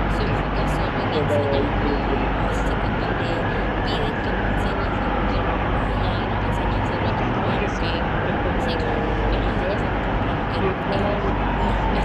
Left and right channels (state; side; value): identical; both; correlation 1.00